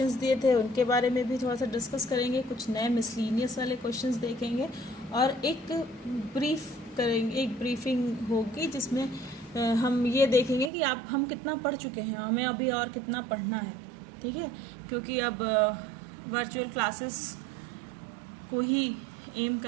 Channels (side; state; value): left; drops out; at 10.7 s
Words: दिए थे उनके बारे में भी थोड़ा सा डिस्कस करेंगे, कुछ नए मिसलीनियस वाले क्वेश्चंस देखेंगे और एक ब्रीफिंग होगी जिसमें हम ये देखेंगे कि हम कितना पढ़ चुके हैं, हमें अभी और कितना पढ़ना है। ठीक है, क्योंकि अब वर्चुअल क्लासेस को ही एम